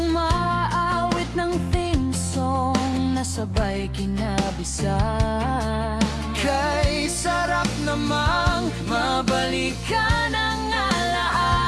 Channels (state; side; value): identical; both; correlation 1.00